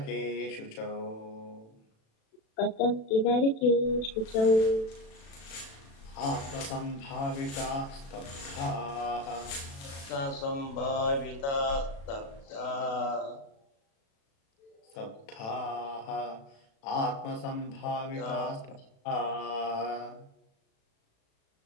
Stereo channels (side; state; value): right; late; 36 ms